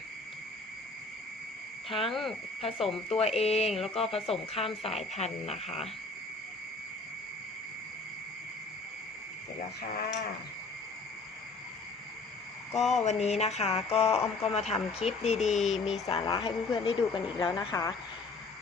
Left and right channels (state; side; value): quieter; right; 3.7 dB